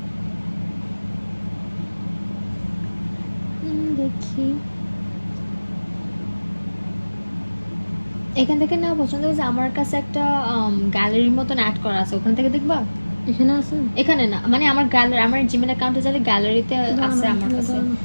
দেখি এখান থেকে নেওয়া পছন্দ হয়েছে। আমার কাছে একটা গ্যালারির মতন অ্যাড করা আছে, ওখান থেকে দেখবা। এখানে আছে? এখানে না, মানে আমার গ্যালারি, আমার জিমেল অ্যাকাউন্টে যাবে, গ্যালারিতে আছে আমার কাছে।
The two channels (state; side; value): inverted; both; correlation -1.00